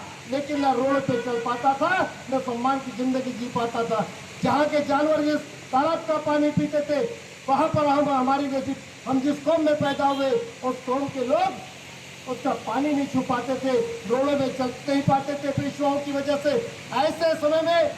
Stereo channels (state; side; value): identical; both; correlation 1.00